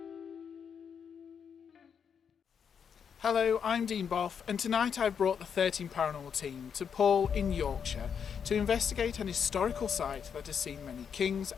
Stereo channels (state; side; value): quieter; right; 7.2 dB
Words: Hello, I'm Dean Boff, and tonight I've brought the 13 Paranormal team to Paull in Yorkshire to investigate an historical site that has seen many kings